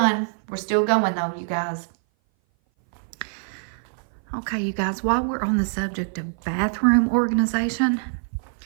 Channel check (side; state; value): left; silent; 58 dB below the other